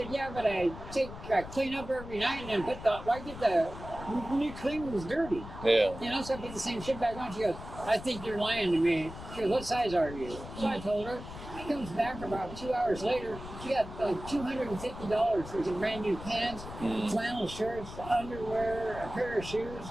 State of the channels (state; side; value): noise; left; rumble, 12 dB below the sound